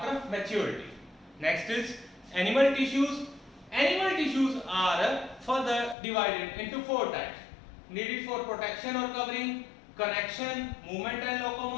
maturity. Next is animal tissues. Animal tissues are further divided into four types: needed for protection or covering, connection, movement and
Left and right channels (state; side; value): drops out; right; at 6.0 s